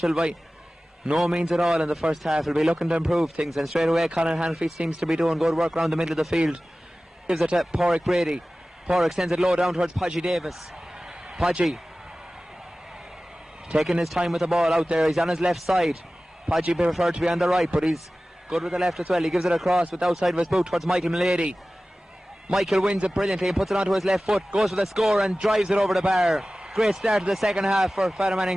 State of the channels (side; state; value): both; normal; correlation 0.96